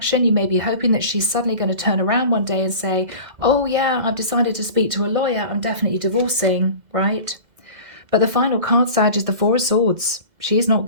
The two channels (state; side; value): late; left; 2.0 ms